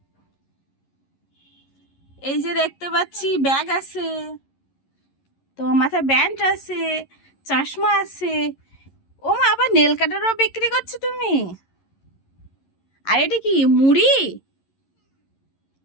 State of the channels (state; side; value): late; right; 11 ms